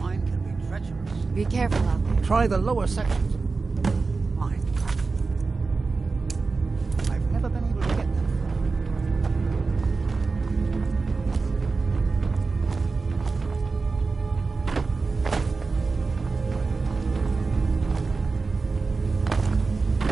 can be treacherous. Be careful out there. Try the lower sections. Mine. I've never been able to get them.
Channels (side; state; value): left; quieter; 4.1 dB